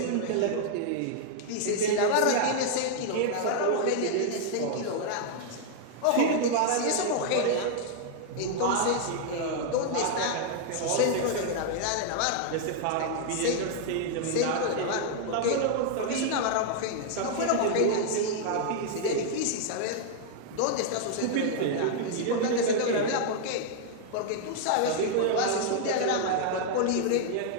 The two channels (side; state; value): both; different; correlation -0.01